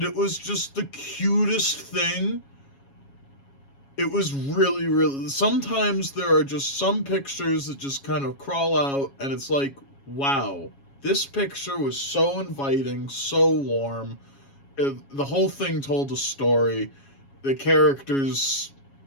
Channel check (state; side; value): late; right; 7.2 ms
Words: it was just the cutest thing. It was really, really. Sometimes there are just some pictures that just kind of crawl out, and it's like, wow, this picture was so inviting, so warm. The whole thing told a story. The characters,